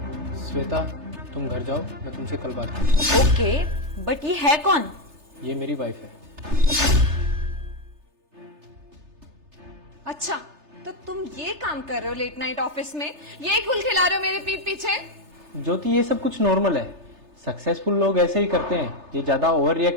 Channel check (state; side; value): late; left; 3.3 ms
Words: श्वेता, तुम घर जाओ, मैं तुमसे कल बात करूँ। ओके, बट ये है कौन? ये मेरी वाइफ है। अच्छा, तो तुम ये काम कर रहे हो लेट नाइट ऑफिस में, यही गुल खिला रहे हो मेरे पीठ पीछे? ज्योति, ये सब कुछ नॉर्मल है। सक्सेसफुल लोग ऐसे ही करते हैं। ये ज्यादा ओवर